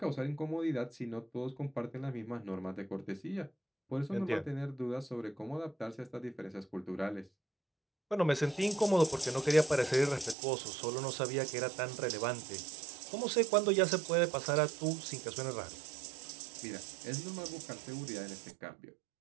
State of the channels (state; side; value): drops out; left; at 10.4 s